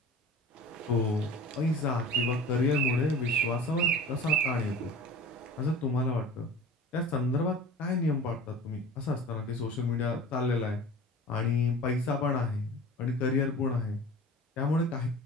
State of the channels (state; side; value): normal; both; correlation 0.38